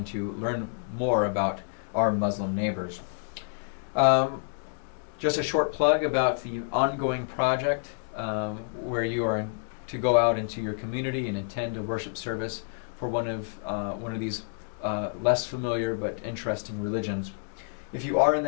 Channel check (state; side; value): silent; right; digital silence